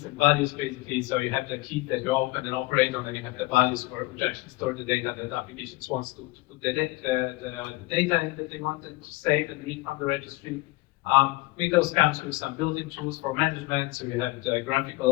and values basically. So you have the keys that you open and operate on, and you have the values which actually store the data that the applications wants to put the data in that they wanted to save and read from the registry. Windows comes with some built-in tools for management. So you have the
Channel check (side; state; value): right; quieter; 21.9 dB